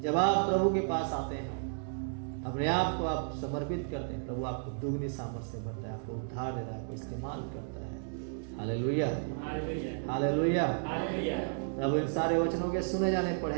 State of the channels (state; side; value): silent; left; digital silence